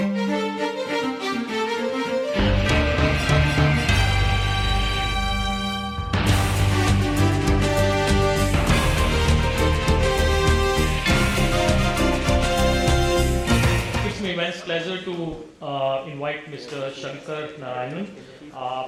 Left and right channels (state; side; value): identical; both; correlation 1.00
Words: my immense pleasure to invite Mr. Shankar Narayanan.